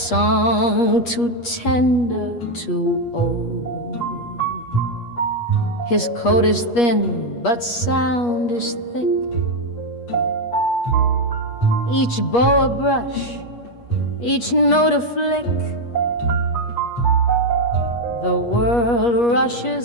too tender, too old. His coat is thin, but sound is thick. Each bow a brush, each note a flick. The world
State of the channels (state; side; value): late; right; 8.4 ms